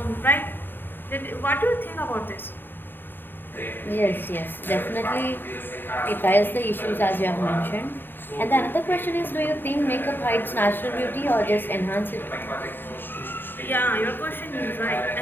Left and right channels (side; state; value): right; late; 0.095 ms